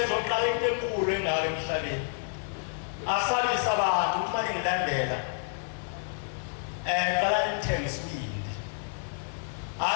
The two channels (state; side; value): silent; right; digital silence